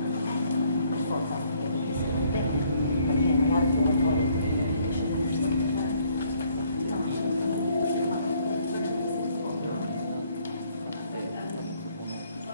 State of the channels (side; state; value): both; inverted; correlation -0.65